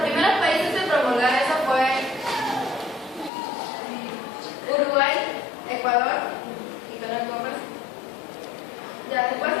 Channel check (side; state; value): right; drops out; at 3.3 s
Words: países en promulgar eso fue Uruguay, Ecuador y Perú en Conversa. Ya, después